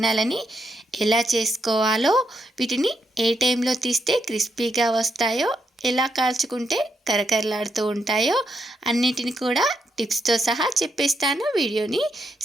ఎలా చేసుకోవాలో, వీటిని ఏ టైంలో తీస్తే క్రిస్పీగా వస్తాయో, ఎలా కాల్చుకుంటే కరకరలాడుతూ ఉంటాయో అన్నిటిని కూడా టిప్స్తో సహా చెప్పేస్తాను. వీడియోని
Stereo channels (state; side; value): normal; both; correlation 0.79